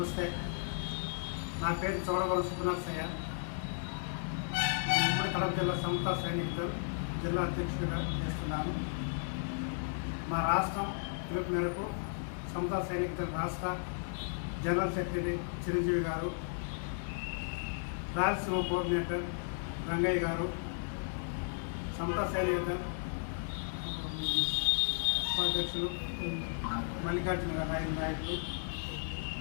నా పేరు చోడవరం సుబ్రహ్మణ్య. నేను ఉమ్మడి కడప జిల్లా సమతా సైనికులు జిల్లా అధ్యక్షుడిగా చేస్తున్నాను. మా రాష్ట్రం పిలుపు మేరకు సమతా సైనికుల రాష్ట్ర జనరల్ సెక్రటరీ చిరంజీవి గారు, రాయలసీమ కోఆర్డినేటర్ రంగయ్య గారు, సమతా సైనికుల ఉపాధ్యక్షులు మల్లికార్జున నాయకులు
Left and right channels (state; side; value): silent; right; 55 dB below the other